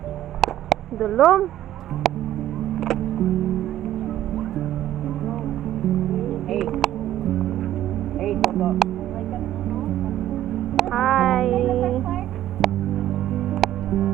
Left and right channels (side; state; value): left; quieter; 12.8 dB